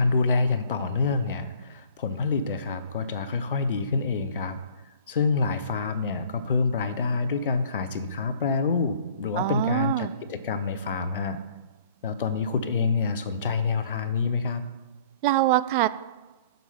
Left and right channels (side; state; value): both; inverted; correlation -0.53